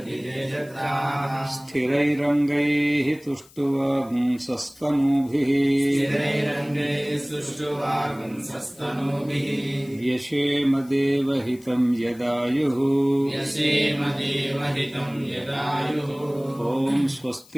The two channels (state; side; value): noise; left; hiss, 25 dB below the sound